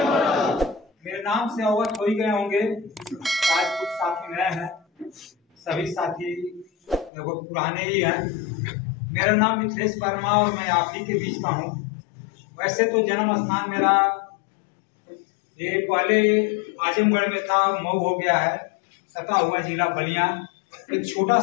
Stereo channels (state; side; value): drops out; right; at 7.1 s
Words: मोरल। मेरे नाम से अवगत हो ही गए होंगे। आज कुछ साथी नए हैं, सभी साथी लगभग पुराने ही हैं। मेरा नाम मिथिलेश वर्मा और मैं आप ही के बीच का हूँ। वैसे तो जन्म स्थान मेरा ये पहले आजमगढ़ में था, मऊ हो गया है, सटा हुआ जिला बलिया। एक छोटा